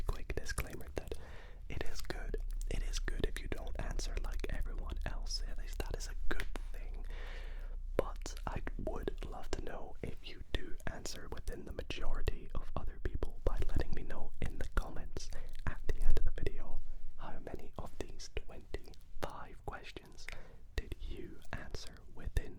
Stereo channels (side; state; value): both; identical; correlation 1.00